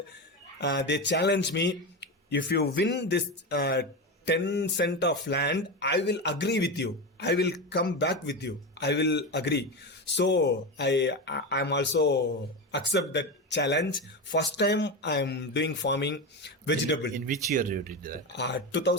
They challenge me, if you win this 10 cent of land, I will agree with you, I will come back with you, I will agree. So I'm also accept that challenge. First time I'm doing farming vegetable. In which year you did that?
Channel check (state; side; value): normal; both; correlation 0.18